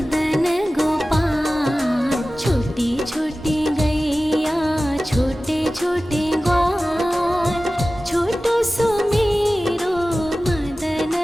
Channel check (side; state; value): both; normal; correlation 0.96